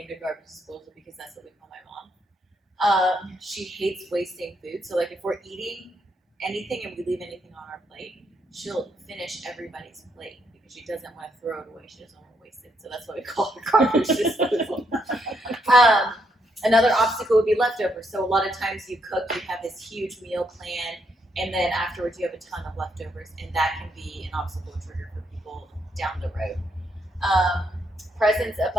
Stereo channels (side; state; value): both; normal; correlation 0.76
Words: it garbage disposal because that's what we call my mom. She hates wasting food. So like if we're eating anything and we leave anything on our plate, she'll finish everybody's plate because she doesn't want to throw it away. She doesn't want to waste it. So that's why we call it garbage disposal. Another obstacle would be leftovers. So a lot of times you cook, you have this huge meal plan, and then afterwards you have a ton of leftovers, and that can be an obstacle trigger for people down the road. Presence,